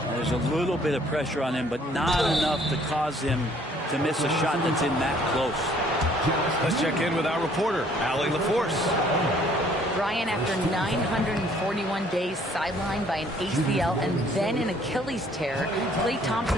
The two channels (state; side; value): normal; both; correlation 0.60